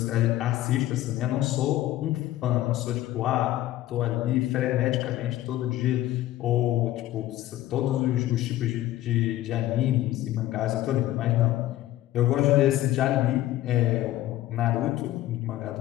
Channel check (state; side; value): quieter; right; 14.7 dB